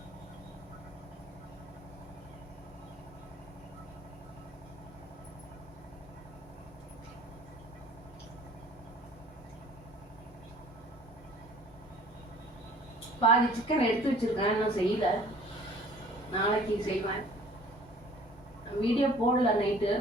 பாதி சிக்கன் எடுத்து வச்சிருக்கேன், இன்னும் செய்யல. நாளைக்கு செய்வேன். வீடியோ போடல. நைட்டு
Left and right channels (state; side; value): normal; both; correlation 0.52